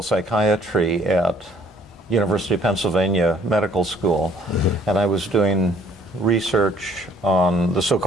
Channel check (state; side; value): normal; both; correlation 0.60